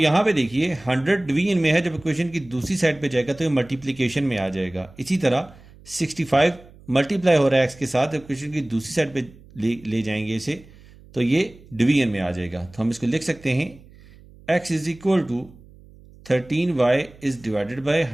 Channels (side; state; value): right; noise; hum, 23 dB below the sound